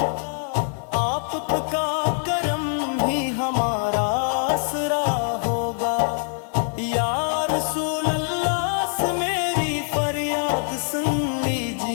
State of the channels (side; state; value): right; silent; 58 dB below the other